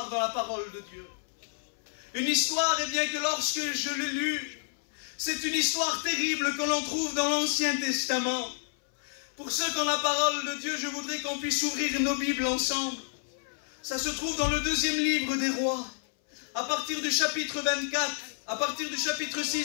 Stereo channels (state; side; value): silent; right; 58 dB below the other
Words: dans la parole de Dieu. Une histoire, et bien que lorsque je l'ai lue, c'est une histoire terrible que l'on trouve dans l'Ancien Testament. Pour ceux qui ont la parole de Dieu, je voudrais qu'on puisse ouvrir nos Bibles ensemble. Ça se trouve dans le 2e livre des Rois, à partir du chapitre 24, à partir du chapitre